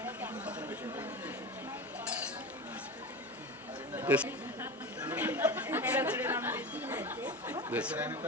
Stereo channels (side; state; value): both; normal; correlation 0.27